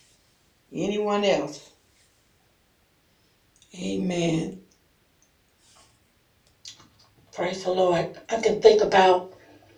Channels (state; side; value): identical; both; correlation 1.00